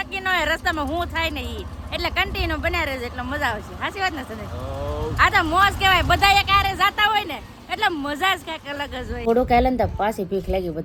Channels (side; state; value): both; identical; correlation 1.00